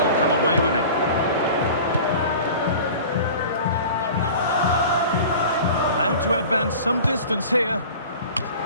come away with it. Allowed to advance some distance here.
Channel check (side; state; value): both; inverted; correlation -0.40